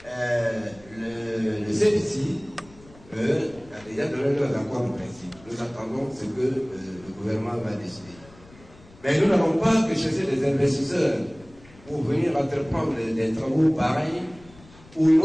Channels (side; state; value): left; noise; rumble, 24 dB below the sound